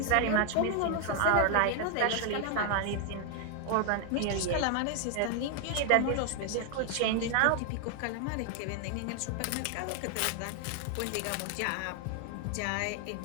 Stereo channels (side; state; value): both; different; correlation 0.00